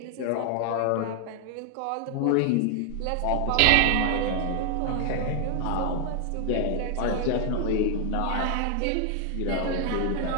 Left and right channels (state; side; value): different; both; correlation 0.00